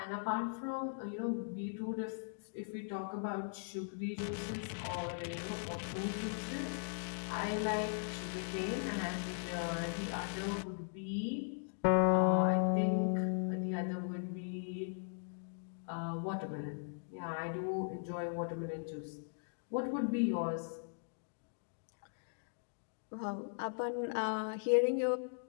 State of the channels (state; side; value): silent; right; digital silence